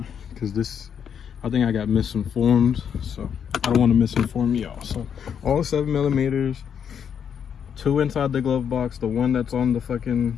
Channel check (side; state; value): right; quieter; 7.9 dB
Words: this, I think I got misinformed. So I don't want to misinform y'all. So all 7mm, 2 inside the glove box. The one that's on the fucking